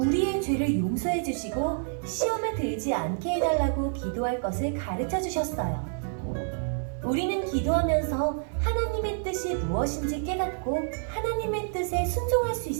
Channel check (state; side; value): silent; left; 56 dB below the other